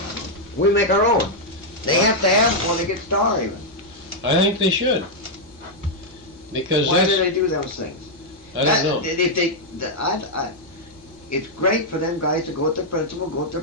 We make our own. They have to have one to get Star even. I think they should. Because why do they do those things? I don't know. It's great for them guys to go with the principal, go with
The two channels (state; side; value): normal; both; correlation -0.03